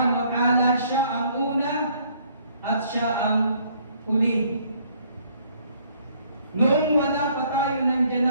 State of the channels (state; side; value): inverted; both; correlation -0.63